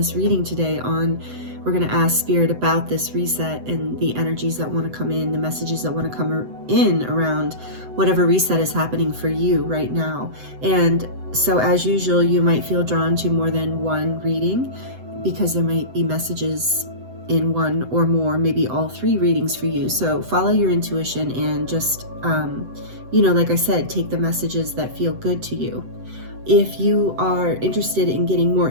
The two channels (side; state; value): left; late; 7.9 ms